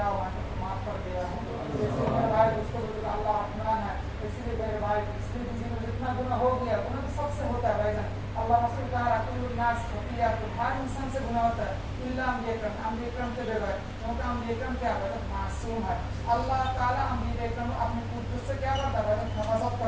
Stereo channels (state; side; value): identical; both; correlation 1.00